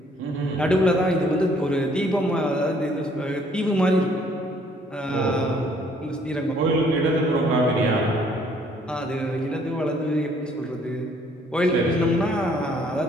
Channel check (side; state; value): both; normal; correlation 0.62